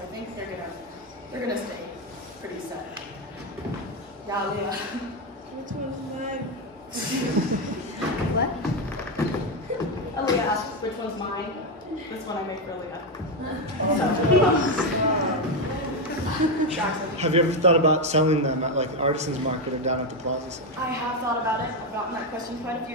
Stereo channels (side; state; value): both; normal; correlation 0.07